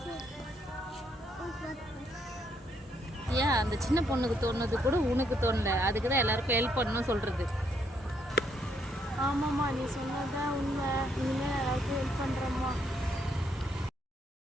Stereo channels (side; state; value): both; normal; correlation 0.73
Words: ஏன் அந்த சின்ன பொண்ணுக்கு தோணுது கூட உனக்கு தோணல? அதுக்கு தான் எல்லாருக்கும் ஹெல்ப் பண்ணணும் சொல்றது. ஆமாம்மா, நீ சொன்னதான் உண்மை. இனிமேல் எல்லாருக்கும் ஹெல்ப் பண்ணுறோம்மா.